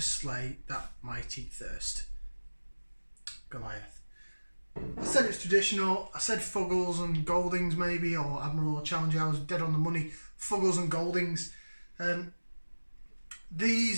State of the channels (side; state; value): both; inverted; correlation -1.00